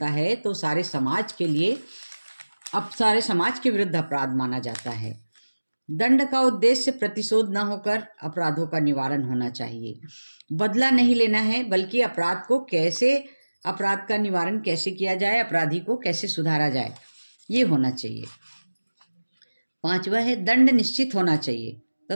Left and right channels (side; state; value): both; inverted; correlation -1.00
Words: है तो सारे समाज के विरुद्ध अपराध माना जाता है। दंड का उद्देश्य प्रतिशोध न होकर अपराधों का निवारण होना चाहिए। बदला नहीं लेना है, बल्कि अपराध का निवारण कैसे किया जाए, अपराधी को कैसे सुधारा जाए, ये होना चाहिए। पांचवा है, दंड निश्चित होना चाहिए